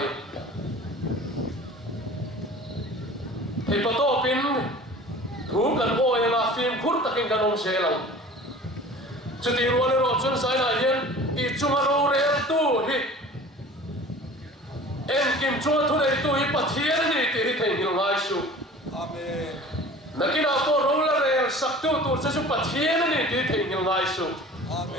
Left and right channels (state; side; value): normal; both; correlation 0.43